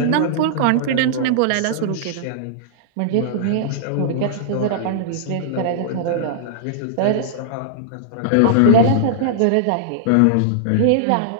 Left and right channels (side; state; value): both; different; correlation -0.02